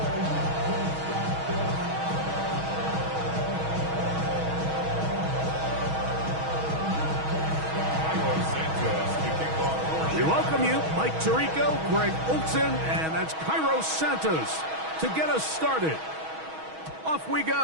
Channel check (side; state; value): left; late; 6.3 ms